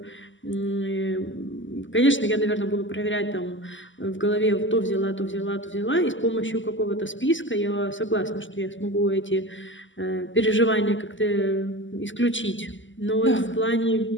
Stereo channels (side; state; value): right; late; 0.55 ms